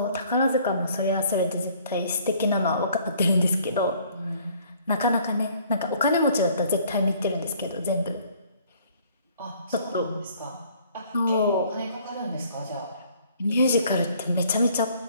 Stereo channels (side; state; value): both; inverted; correlation -0.59